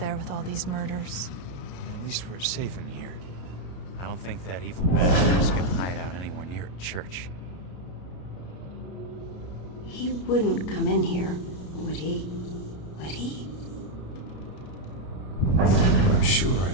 with all these murders. At least we're safe in here. I don't think that evil bastard's gonna hide out anywhere near a church. He wouldn't come in here, would he? Would he? I'm sure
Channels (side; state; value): right; late; 33 ms